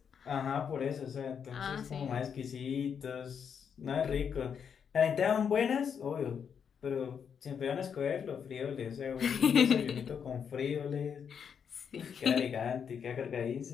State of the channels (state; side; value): quieter; right; 7.2 dB